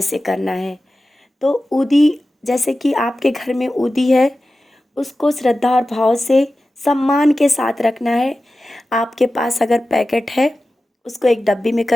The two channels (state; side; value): normal; both; correlation 0.94